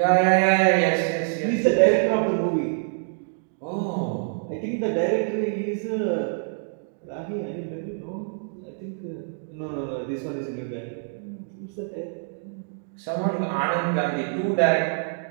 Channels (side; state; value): left; silent; digital silence